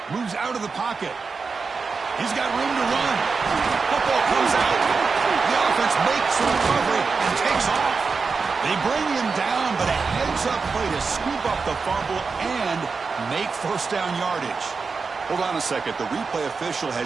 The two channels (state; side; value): quieter; left; 4.8 dB